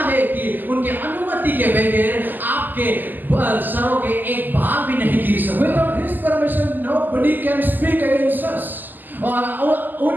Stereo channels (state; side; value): late; left; 0.087 ms